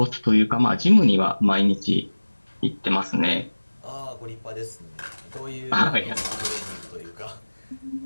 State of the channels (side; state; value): both; inverted; correlation -1.00